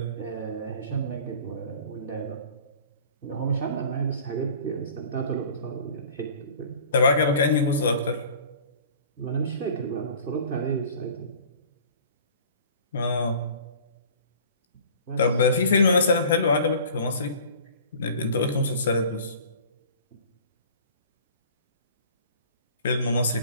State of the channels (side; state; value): both; inverted; correlation -0.46